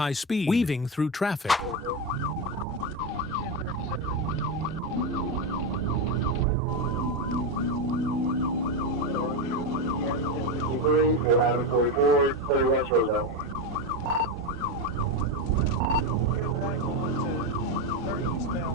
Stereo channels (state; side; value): normal; both; correlation 0.12